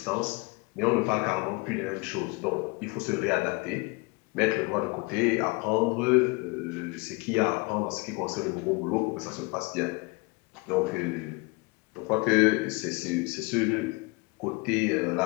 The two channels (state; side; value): quieter; right; 27.0 dB